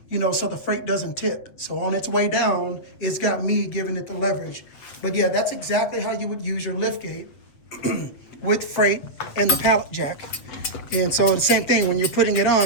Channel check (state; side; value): late; right; 8.3 ms